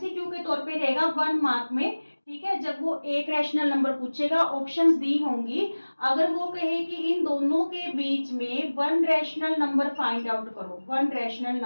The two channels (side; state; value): both; inverted; correlation -1.00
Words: के तौर पे रहेगा 1 मार्क में। ठीक है, जब वो एक रैशनल नंबर पूछेगा, ऑप्शंस दी होंगी, अगर वो कहे कि इन दोनों के बीच में 1 रैशनल नंबर फाइंड आउट करो, 1 रैशनल